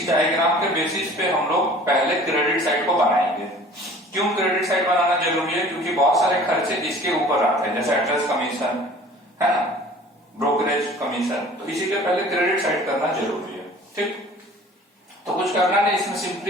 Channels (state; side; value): normal; both; correlation 0.47